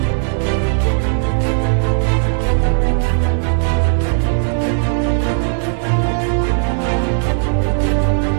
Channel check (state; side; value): silent; left; digital silence